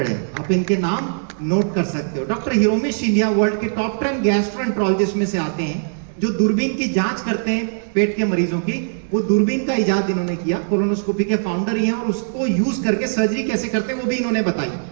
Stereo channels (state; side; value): silent; left; digital silence